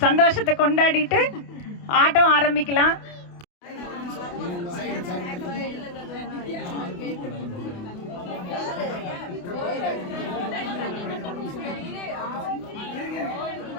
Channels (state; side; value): late; right; 28 ms